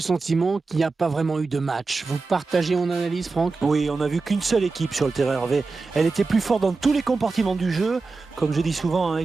sentiment qu'il n'y a pas vraiment eu de match. Vous partagez mon analyse, Franck? Oui, on n'a vu qu'une seule équipe sur le terrain, Hervé. Elle était plus forte dans tous les compartiments du jeu. Comme je dis souvent, hein,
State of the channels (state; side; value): quieter; left; 4.0 dB